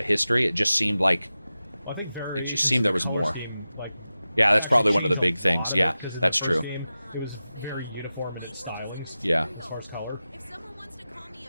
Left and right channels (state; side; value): inverted; both; correlation -0.94